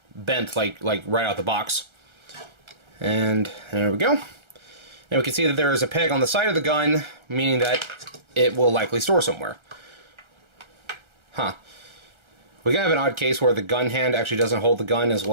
bent like right out the box. And there we go. And we can see that there is a peg on the side of the gun, meaning that it will likely store somewhere. Huh. We have an odd case where the gun hand actually doesn't hold the gun as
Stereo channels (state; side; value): late; left; 1.3 ms